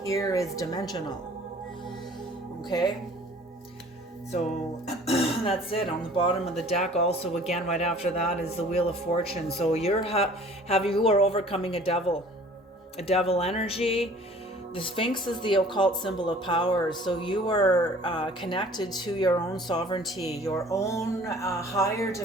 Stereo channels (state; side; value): normal; both; correlation 0.50